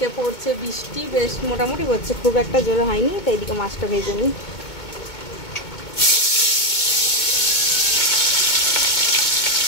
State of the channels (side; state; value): right; late; 2.2 ms